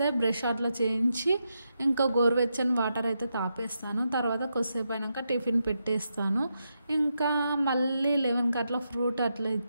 బ్రష్ అట్లా చేయించి ఇంకా గోరువెచ్చని వాటర్ అయితే తాపేస్తాను. తర్వాత కొద్దిసేపు అయినాక టిఫిన్ పెట్టేస్తాను. ఇంకా మళ్ళీ 11కి అట్లా ఫ్రూట్ అట్లా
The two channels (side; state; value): both; inverted; correlation -0.84